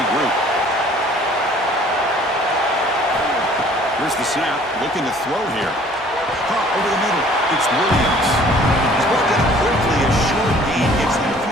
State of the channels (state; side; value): normal; both; correlation 0.54